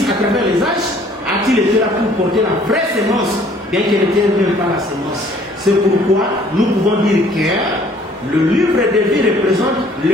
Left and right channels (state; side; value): normal; both; correlation 0.57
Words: à travers les âges, a-t-il été là pour porter la vraie semence, bien qu'elle n'était même pas la semence. C'est pourquoi nous pouvons dire que le livre de vie représente